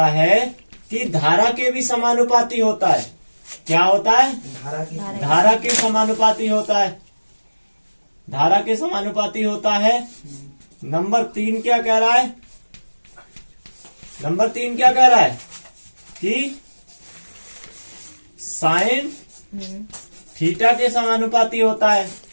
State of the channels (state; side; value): inverted; both; correlation -1.00